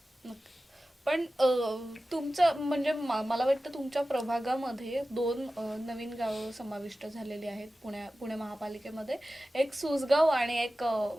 पण तुमचं म्हणजे मला वाटतं तुमच्या प्रभागामध्ये 2 नवीन गावं समाविष्ट झालेली आहेत पुणे महापालिकेमध्ये, एक सुसगाव आणि एक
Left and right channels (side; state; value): both; normal; correlation 0.95